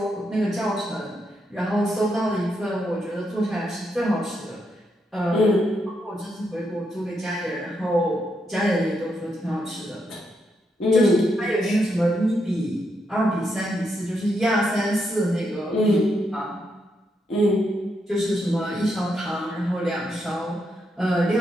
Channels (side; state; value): both; normal; correlation 0.80